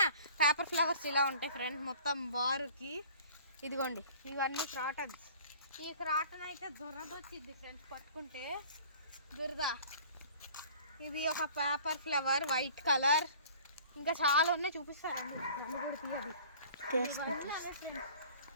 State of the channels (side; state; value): both; inverted; correlation -0.48